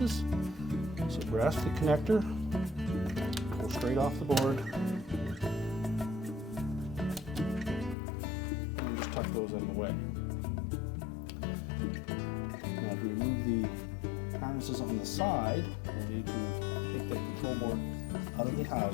So grasp the connector, pull straight off the board, tuck those out of the way. Now to remove the harnesses on the side, we'll need to take that control board out of the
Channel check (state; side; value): drops out; right; at 8.0 s